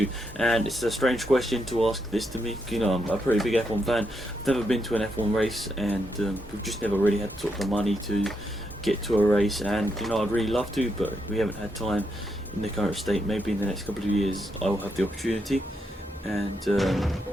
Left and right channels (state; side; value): normal; both; correlation 0.81